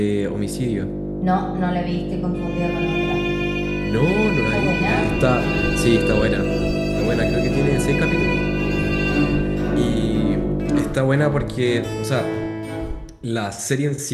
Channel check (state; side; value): identical; both; correlation 1.00